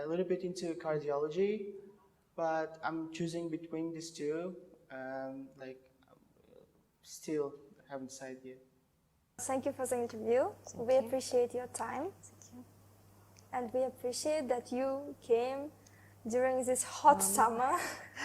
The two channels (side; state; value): both; identical; correlation 1.00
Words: a little bit into cardiology, but I'm choosing between these two. Still haven't decided yet. Thank you for the interview. We appreciate your time. Thank you. And we appreciate that you came during this hot summer.